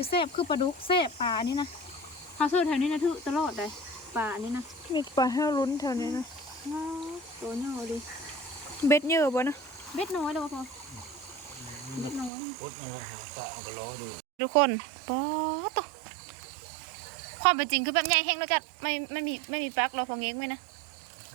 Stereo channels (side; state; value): left; drops out; at 12.3 s